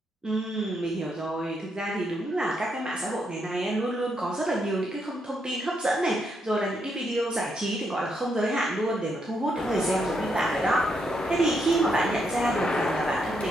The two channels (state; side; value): normal; both; correlation 0.78